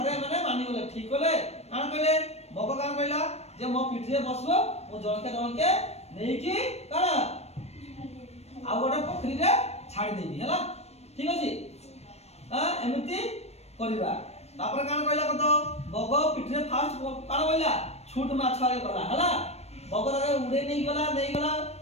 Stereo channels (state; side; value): late; right; 0.31 ms